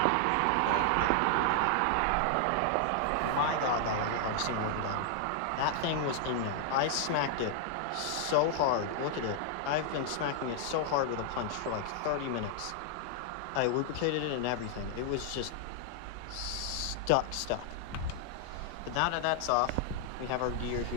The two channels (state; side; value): different; both; correlation 0.00